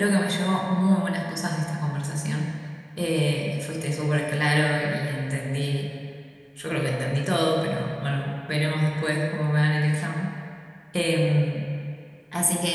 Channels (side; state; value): both; identical; correlation 1.00